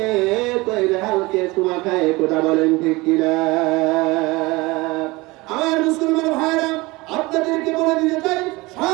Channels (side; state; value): left; quieter; 22.6 dB